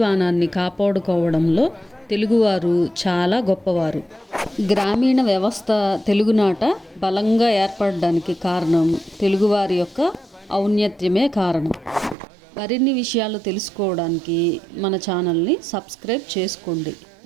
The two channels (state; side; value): drops out; left; at 12.2 s